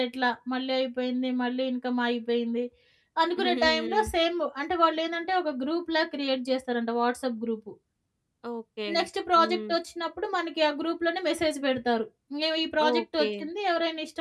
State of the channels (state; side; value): identical; both; correlation 1.00